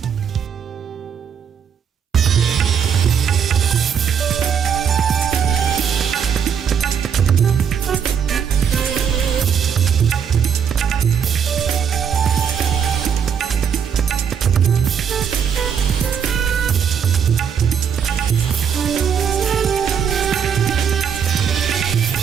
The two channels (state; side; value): quieter; left; 7.6 dB